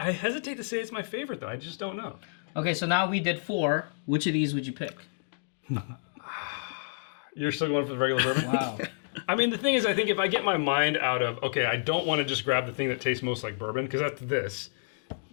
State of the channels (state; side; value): silent; right; digital silence